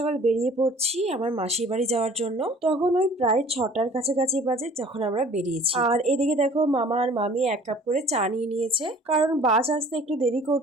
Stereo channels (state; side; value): normal; both; correlation 0.50